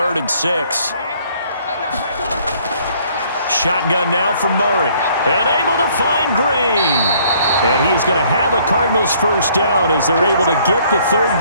and 6. Shotgun now from Murray. And able to find Green. And he is going to have a Cardinals first down as they're able to get the 3rd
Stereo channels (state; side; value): inverted; both; correlation -0.61